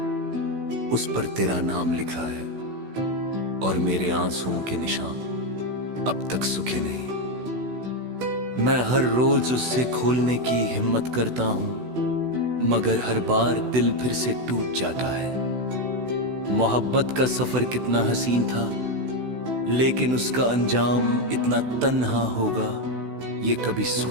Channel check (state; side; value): late; left; 16 ms